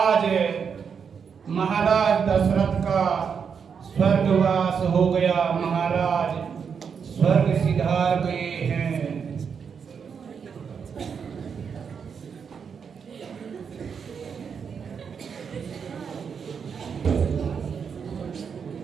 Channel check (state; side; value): quieter; left; 6.6 dB